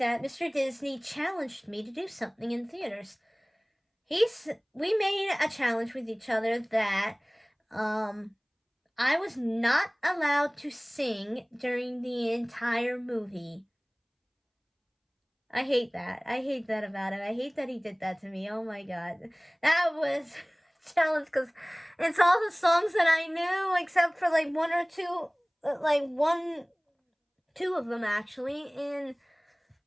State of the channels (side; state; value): both; identical; correlation 1.00